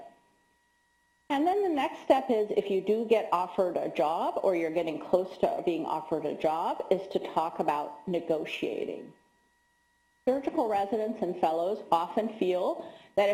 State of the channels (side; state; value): both; identical; correlation 1.00